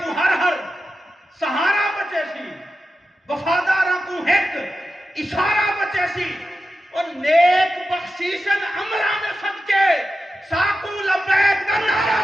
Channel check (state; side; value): normal; both; correlation 0.92